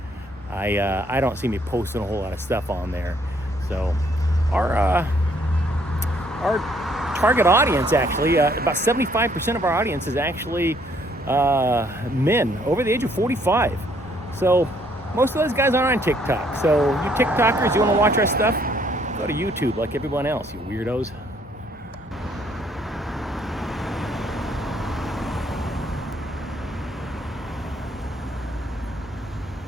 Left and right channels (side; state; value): both; normal; correlation 0.66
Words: I don't see me posting a whole lot of stuff on there. So our target audience, actually, about 75% of our audience is actually men over the age of 45. So most of those guys aren't on TikTok. So you TikTokers, you want to watch our stuff, go to YouTube like everyone else, you weirdos.